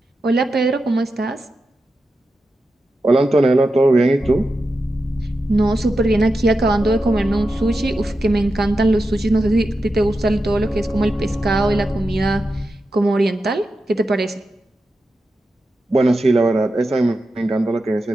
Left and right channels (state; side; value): normal; both; correlation 0.90